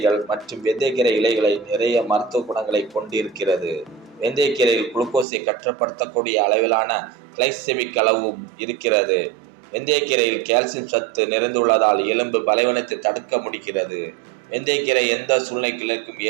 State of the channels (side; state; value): left; drops out; at 5.2 s